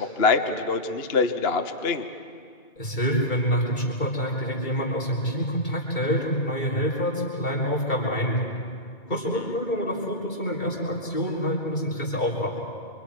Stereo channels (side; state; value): right; late; 2.3 ms